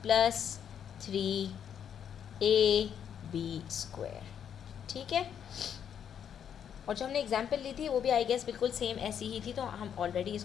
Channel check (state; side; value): quieter; right; 8.6 dB